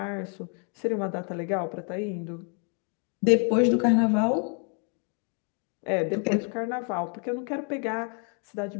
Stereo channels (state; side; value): quieter; right; 39.9 dB